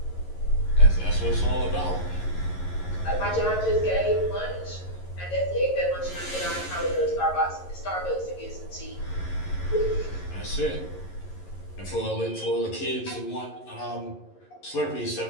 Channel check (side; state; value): right; late; 11 ms